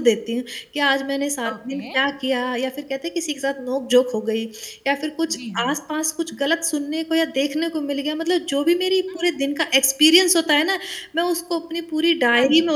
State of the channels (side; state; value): both; identical; correlation 1.00